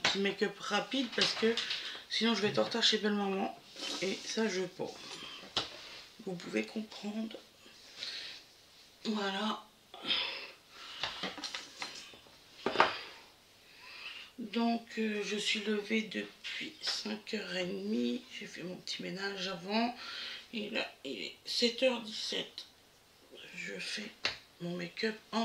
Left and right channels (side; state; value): both; identical; correlation 1.00